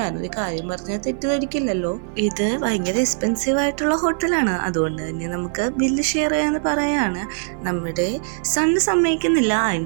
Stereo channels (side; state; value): left; silent; 59 dB below the other